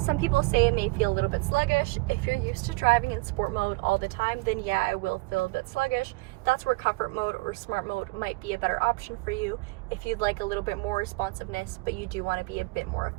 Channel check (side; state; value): left; quieter; 25.1 dB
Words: people say it may feel a little bit sluggish. If you're used to driving in sport mode all the time, then yeah, it will feel a bit sluggish. That's where comfort mode or smart mode might be a better option for you if you'd like a little bit more responsiveness, but you do want to be a bit more